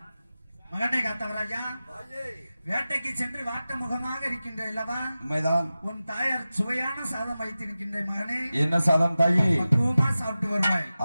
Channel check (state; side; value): inverted; both; correlation -0.95